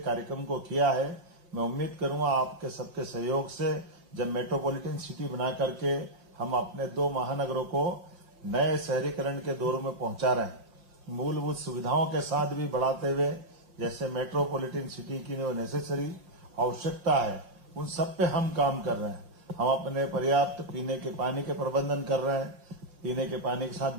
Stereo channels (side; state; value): left; late; 5.6 ms